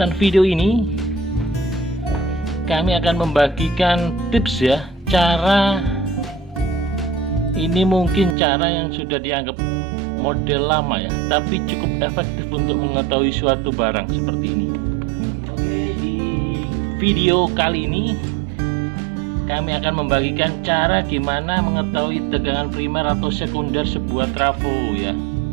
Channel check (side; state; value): left; drops out; at 8.3 s